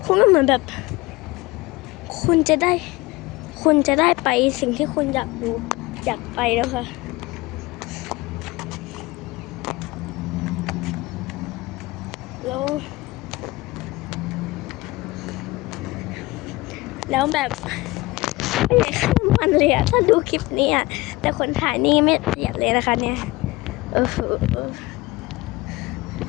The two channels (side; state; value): right; quieter; 21.3 dB